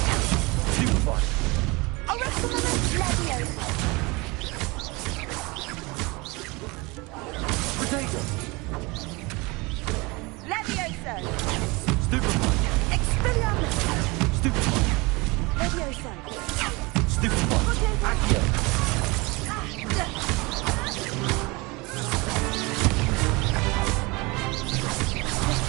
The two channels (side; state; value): left; quieter; 25.4 dB